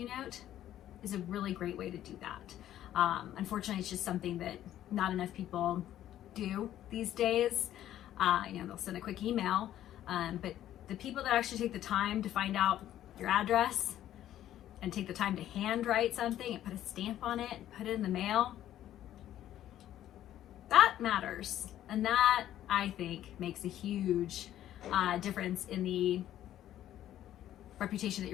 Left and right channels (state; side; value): quieter; right; 12.2 dB